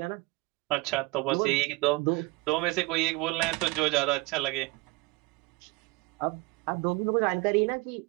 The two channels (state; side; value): quieter; left; 24.1 dB